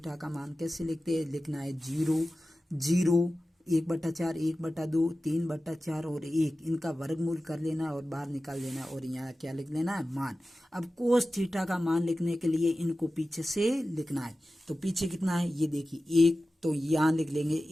का मान कैसे लिखते हैं, लिखना है 0 1/4, 1/2, 3/4 और 1, इनका वर्गमूल कर लेना और बाहर निकाल लेना और यहाँ क्या लिख लेना है, मान। अब कोस थीटा का मान लिखने के लिए इनको पीछे से लिखना है। तो पीछे कितना है, ये देखिए 1, तो यहाँ लिख लेंगे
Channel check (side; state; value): both; normal; correlation 0.95